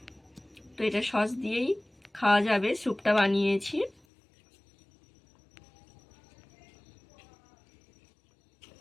তো এটা সস দিয়েই খাওয়া যাবে। স্যুপটা বানিয়েছি।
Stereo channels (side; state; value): right; drops out; at 4.0 s